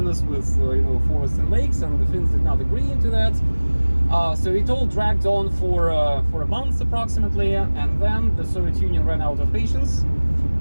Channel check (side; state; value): both; inverted; correlation -1.00